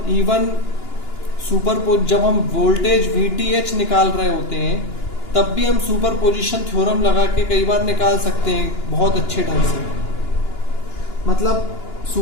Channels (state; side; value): late; right; 2.9 ms